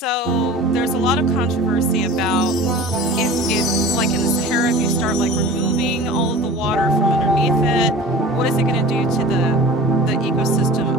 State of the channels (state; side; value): normal; both; correlation 0.39